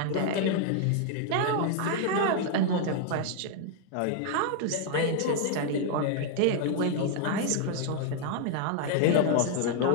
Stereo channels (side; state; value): both; different; correlation 0.00